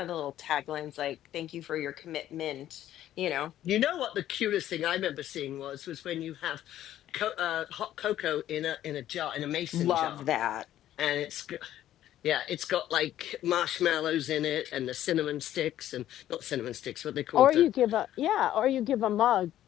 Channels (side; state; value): right; quieter; 12.5 dB